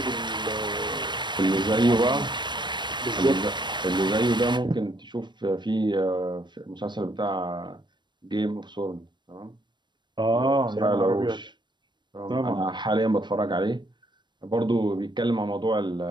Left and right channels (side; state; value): left; late; 0.22 ms